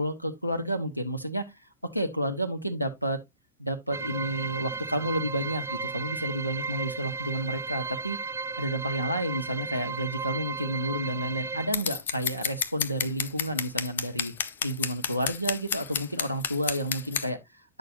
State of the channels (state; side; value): inverted; both; correlation -0.56